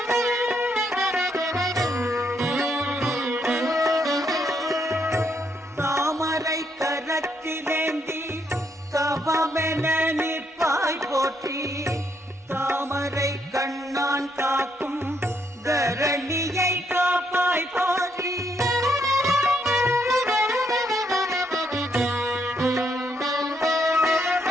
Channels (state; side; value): normal; both; correlation 0.75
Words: தாமரை கரத்திலேந்தி தவமென நிற்பாய் போற்றி. தாமரை கண்ணான் காக்கும் தரணியை காப்பாய் போற்றி.